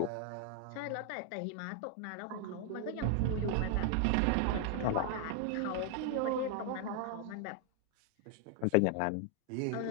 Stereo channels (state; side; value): different; both; correlation 0.00